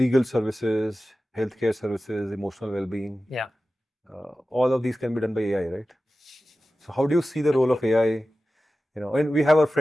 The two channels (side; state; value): both; normal; correlation 0.95